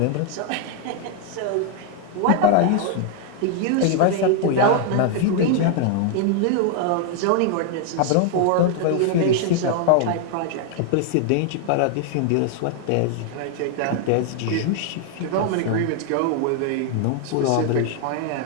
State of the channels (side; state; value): both; different; correlation 0.00